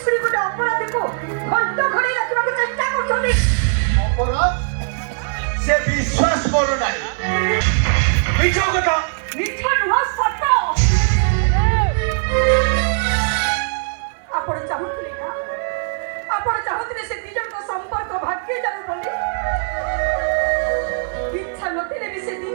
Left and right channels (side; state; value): left; silent; 59 dB below the other